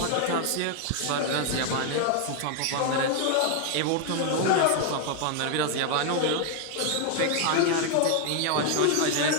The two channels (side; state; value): both; different; correlation 0.00